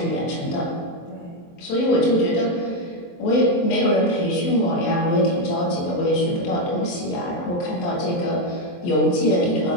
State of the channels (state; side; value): late; right; 23 ms